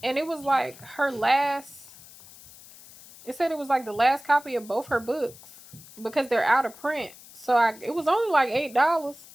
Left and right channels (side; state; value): left; noise; hiss, 20 dB below the sound